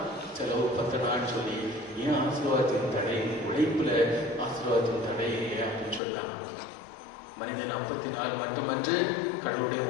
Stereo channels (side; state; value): right; drops out; at 6.0 s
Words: செலவு பத்தனான்னு சொல்லி ஏன் ஆசீர்வாதத்தின் தடை? உழைப்புல ஆசீர்வாதத்தின் தடை அப்படின்னு சொன்னாங்க. மனிதன் 54 மட்டுமன்று, கடவுளுடைய